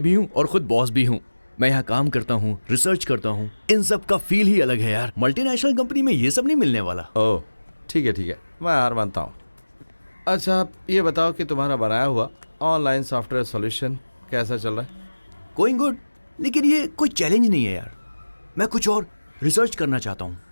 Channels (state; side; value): inverted; both; correlation -1.00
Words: भी हूँ और खुद बॉस भी हूँ। मैं यहाँ काम करता हूँ, रिसर्च करता हूँ, इन सब का फील ही अलग है यार। मल्टीनेशनल कंपनी में ये सब नहीं मिलने वाला। ओह ठीक है, मैं हार मानता हूँ। अच्छा, आप ये बताओ कि तुम्हारा बनाया हुआ ऑनलाइन सॉफ्टवेयर सॉल्यूशन कैसा चल रहा है? गोइंग गुड, लेकिन ये कोई चैलेंज नहीं है यार। मैं कुछ और रिसर्च करना चाहता हूँ।